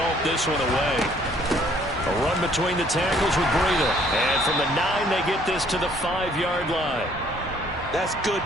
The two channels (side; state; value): both; normal; correlation 0.61